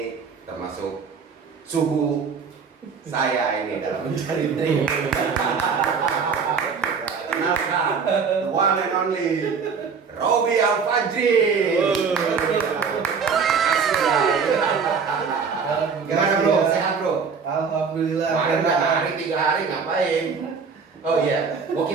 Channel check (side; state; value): left; quieter; 5.7 dB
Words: termasuk suhu saya ini dalam mencari trik. Kenalkan, the one and only Robby Al-Fajri. Gimana bro? Sehat bro? Alhamdulillah. Kemarin 3 hari ngapain? Oh iya,